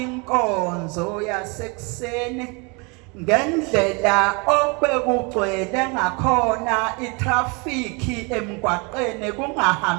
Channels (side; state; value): left; quieter; 30.3 dB